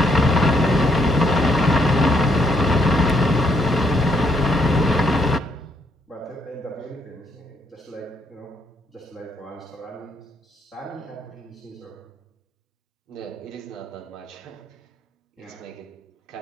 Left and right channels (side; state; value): both; normal; correlation 0.73